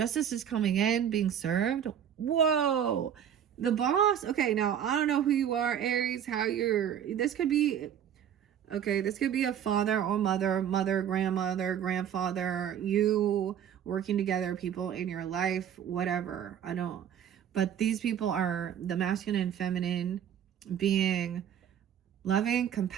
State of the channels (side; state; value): left; quieter; 9.3 dB